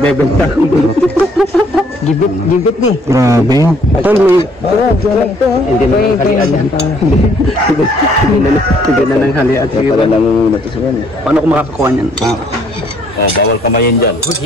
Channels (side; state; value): both; normal; correlation 0.64